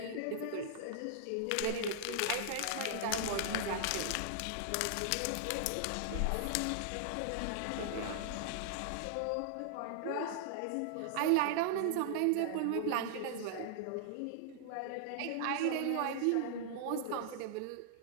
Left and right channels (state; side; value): different; both; correlation -0.01